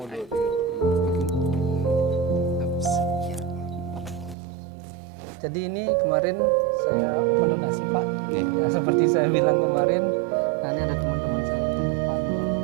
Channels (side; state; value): left; drops out; at 4.4 s